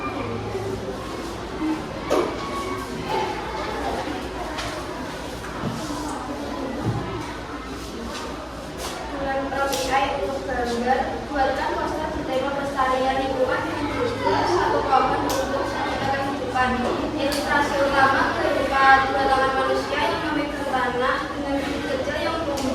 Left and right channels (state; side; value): identical; both; correlation 1.00